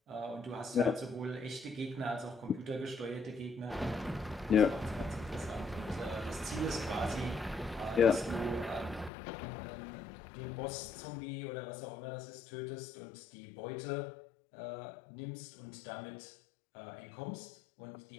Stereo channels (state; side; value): drops out; right; at 9.1 s